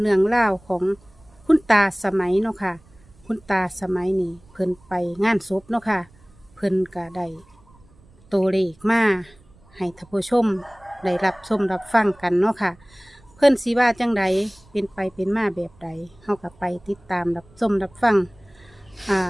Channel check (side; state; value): right; noise; rumble, 28 dB below the sound